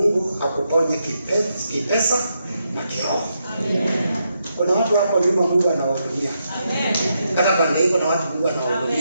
akuponye kipesa na kiroho. Kuna watu hapo nyuma Mungu anawahudumia. Hata pande hiko na watu Mungu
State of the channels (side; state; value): both; inverted; correlation -0.82